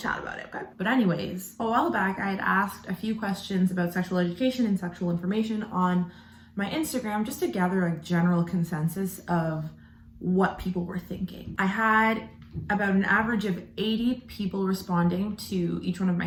about it, okay? But anyways, a while back, I had asked a few questions about sexual education and sexual information on my Instagram just to gather a general consensus of what people were thinking. I had about an average of 80 people responding to each one of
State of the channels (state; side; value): identical; both; correlation 1.00